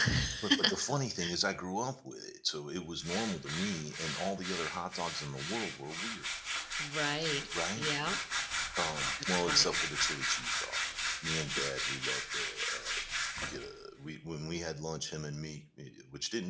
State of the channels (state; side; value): identical; both; correlation 1.00